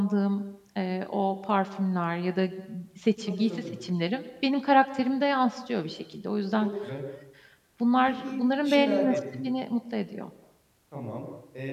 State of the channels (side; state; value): both; identical; correlation 1.00